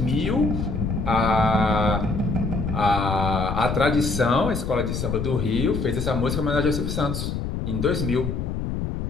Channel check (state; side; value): noise; left; rumble, 3 dB below the sound